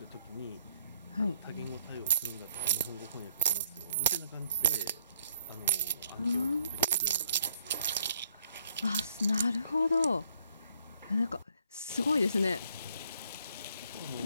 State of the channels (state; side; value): inverted; both; correlation -0.67